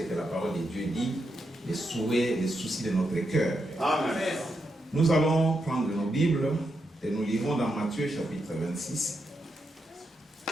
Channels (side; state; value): both; normal; correlation 0.84